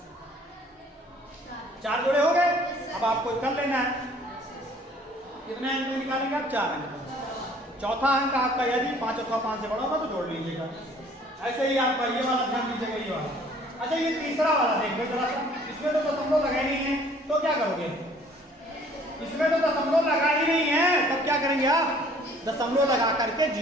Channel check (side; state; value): both; normal; correlation 0.56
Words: चार जोड़े हो गए। अब आपको कर लेना है, कितने अंक निकालेंगे आप, 4 अंक। चौथा अंक आपका यदि 5 अथवा 5 से बड़ा होगा तो जोड़ लीजिएगा। ऐसे ही आपका ये वाला ध्यान दीजिएगा, ये वाला। अच्छा ये तीसरा वाला देखो जरा सा, इसमें तो दशमलव लगा ही नहीं है, तो क्या करोगे, इसमें तो दशमलव लगा ही नहीं है, तब क्या करेंगे आप, दशमलव लगा करके